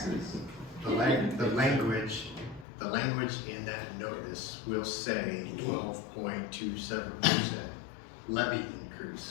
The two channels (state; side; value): drops out; right; at 2.7 s